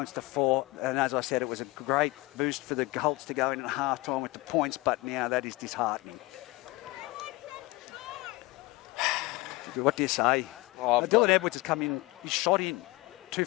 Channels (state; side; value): quieter; right; 22.2 dB